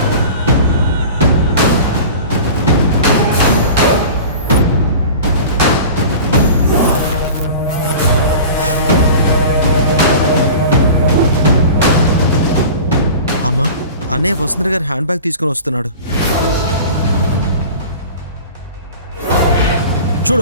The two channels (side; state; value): both; inverted; correlation -0.38